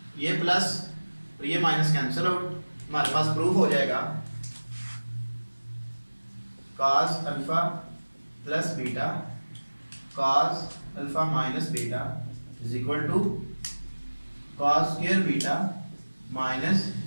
ये प्लस और ये माइनस कैंसिल आउट, हमारे पास प्रूफ हो जाएगा cos alpha plus beta cos alpha minus beta is equal to cos square beta minus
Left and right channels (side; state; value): both; inverted; correlation -1.00